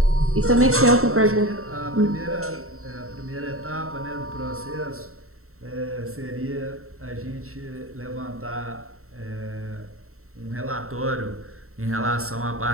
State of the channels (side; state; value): left; late; 0.63 ms